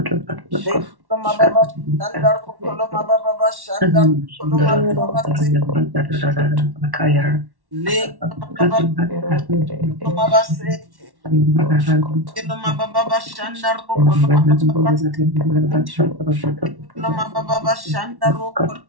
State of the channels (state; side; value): late; left; 1.1 ms